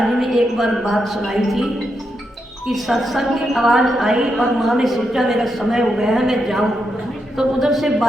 जी ने एक बार बात सुनाई थी कि सत्संग की आवाज़ आई और माँ ने सोचा मेरा समय हो गया है मैं जाऊँ, तो उधर से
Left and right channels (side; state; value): both; normal; correlation 0.83